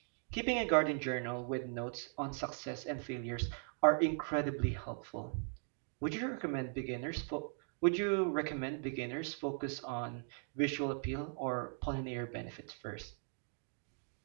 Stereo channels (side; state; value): left; silent; 52 dB below the other